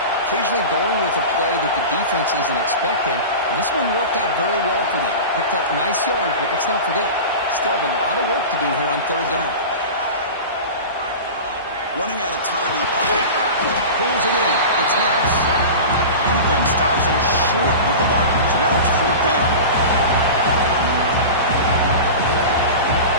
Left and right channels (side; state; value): both; inverted; correlation -0.30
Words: Occasionally going with a play that the defense isn't expecting, and this one worked out very well for them. Picked up nice yards, but let's not forget, still have a lot of work to do here on 3rd down. Running out of time in the pocket. Pulls it in. It's Harris. Defense stops him short of the marker, so now it's 4th down.